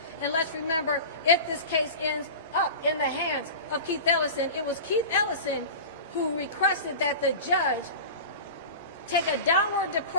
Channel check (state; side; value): inverted; both; correlation -0.32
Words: And let's remember, if this case ends up in the hands of Keith Ellison, it was Keith Ellison who requested that the judge take a downward